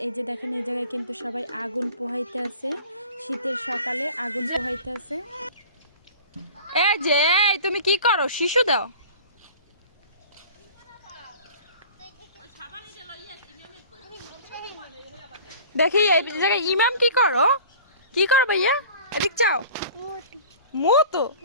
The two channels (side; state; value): both; inverted; correlation -0.43